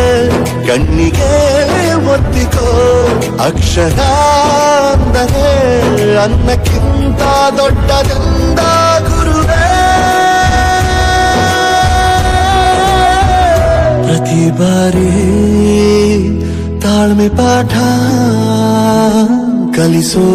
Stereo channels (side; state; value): both; identical; correlation 1.00